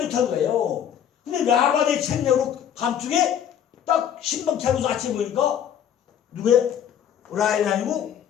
좋다는 거예요. 근데 라반의 책략으로 밤중에 딱 신방 차려서 아침에 보니까 누구예요? 라헬이 아니고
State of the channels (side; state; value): right; quieter; 9.3 dB